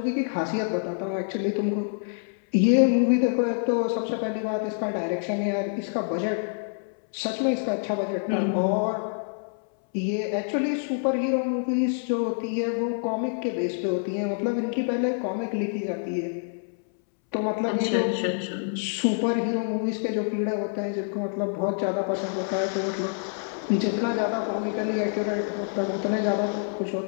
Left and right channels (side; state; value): right; silent; 60 dB below the other